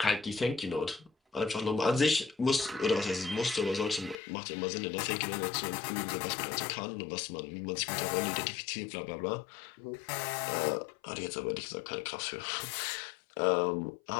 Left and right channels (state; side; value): drops out; right; at 4.2 s